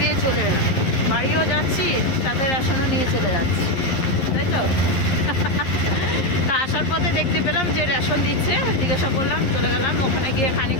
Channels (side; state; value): right; late; 11 ms